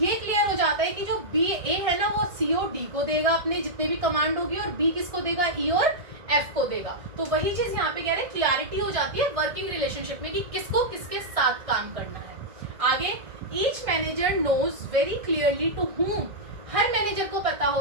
क्लियर हो जाता है कि जो बी ए है ना, वो सी और डी को देगा अपने जितने भी कमांड होगी, और बी किसको देगा, ई और एफ को देगा। तो वही चीज यहाँ पे कह रहे हैं, क्लैरिटी हो जाती है वर्किंग रिलेशनशिप में कि किसको किसके साथ काम करना है। आगे, each manager knows very clearly to whom, हर मैनेजर को पता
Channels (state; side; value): late; left; 1.6 ms